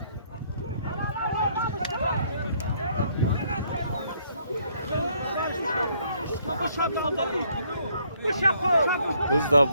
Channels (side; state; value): both; inverted; correlation -0.67